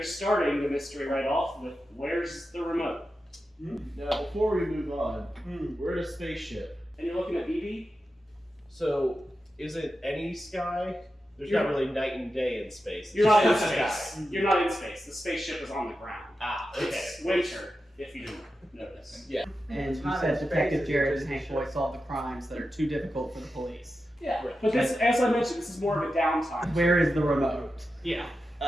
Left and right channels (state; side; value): normal; both; correlation 0.91